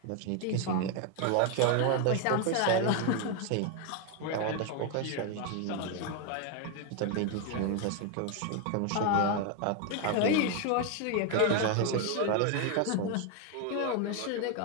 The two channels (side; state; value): both; different; correlation 0.01